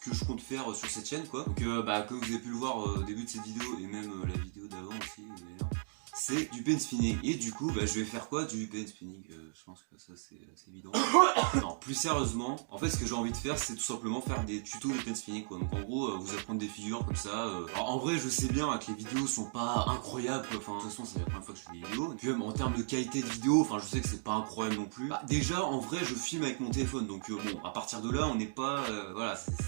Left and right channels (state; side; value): silent; left; digital silence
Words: je compte faire sur cette chaîne, quoi. Donc comme vous avez pu le voir au début de cette vidéo, et même la vidéo d'avant aussi, d'ailleurs, c'est du pen spinning. Et du coup, je vais faire quoi? Du pen spinning. Je pense que ça c'est évident. Non, plus sérieusement, en fait ce que j'ai envie de faire, c'est tout simplement faire des tutos de pen spinning, quoi. Donc en gros, vous apprendre des figures comme ça. Alors en vrai, je sais bien que les vidéos sont pas incroyables, quoi. Enfin, de toute façon, c'est la première fois que je fais des vidéos. Et puis même en termes de qualité de vidéo, enfin, je sais que c'est pas incroyable non plus. Déjà, en vrai, je filme avec mon téléphone, donc bon, à partir de là, on n'est pas, voilà,